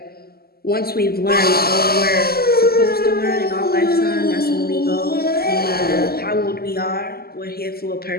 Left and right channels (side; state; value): right; late; 0.45 ms